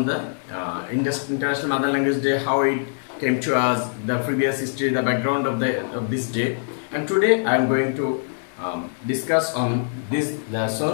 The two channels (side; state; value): right; silent; 63 dB below the other